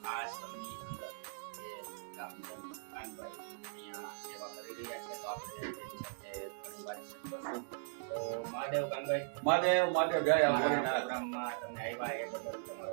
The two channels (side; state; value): left; silent; digital silence